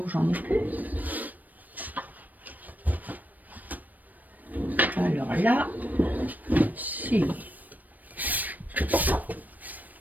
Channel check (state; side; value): late; left; 0.083 ms